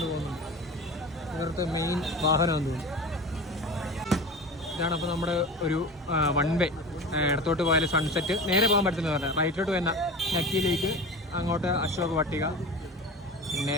പോകുന്നുണ്ട്. ഇവരുടെ മെയിൻ വാഹനമാണെന്ന് തോന്നുന്നു. ഇതാണ് അപ്പോൾ നമ്മുടെ ഒരു 1 വേ. ഇടത്തോട്ട് പോയാൽ സൺസെറ്റ്, നേരെ പോകാൻ പറ്റുന്നത് പറഞ്ഞാൽ റൈറ്റിലോട്ട് വരുന്ന നക്കിയിലേക്ക്, അങ്ങോട്ട് അശോക് വട്ടിക, പിന്നെ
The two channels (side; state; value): both; normal; correlation 0.32